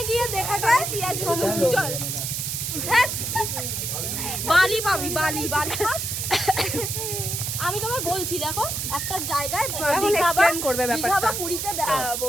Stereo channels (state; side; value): noise; right; hiss, 3 dB below the sound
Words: গিয়ে দেখা যায় কি আছে সমুদ্র। চল বালি পাবি, বালি বালি। আমি তোমায় বলছি, দেখো একটা জায়গায় করবে ব্যাপারটা, পুরীতে দেখাবো,